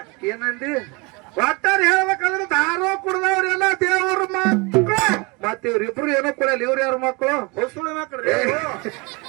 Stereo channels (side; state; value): left; quieter; 27.7 dB